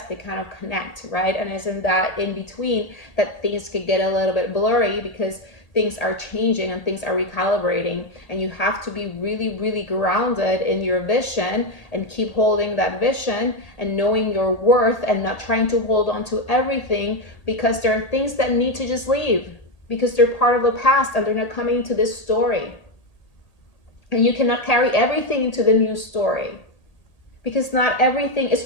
they kind of connect, right? And it's in that in between that things can get a little bit blurry because things are changing and things are recalibrating, and you have to be really, really grounded in your vision and keep holding that vision and knowing your worth and not trying to hold on to everything, because there are things that need to just leave because they're part of the past and they're not coming into this story. And you cannot carry everything into the new story because not everything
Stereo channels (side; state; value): right; late; 1.8 ms